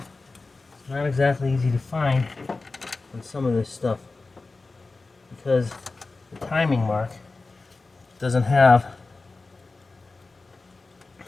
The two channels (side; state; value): right; quieter; 3.7 dB